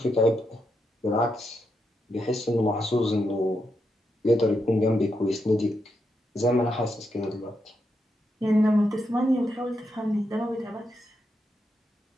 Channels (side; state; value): both; normal; correlation 0.83